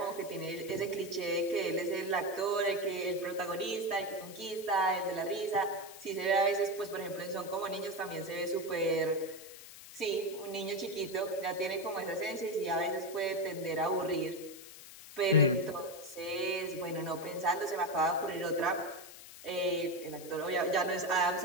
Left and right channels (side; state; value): left; noise; hiss, 16 dB below the sound